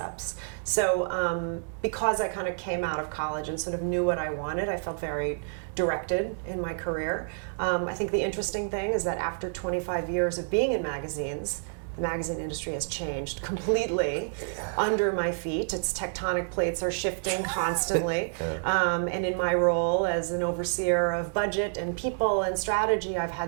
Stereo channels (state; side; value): silent; left; digital silence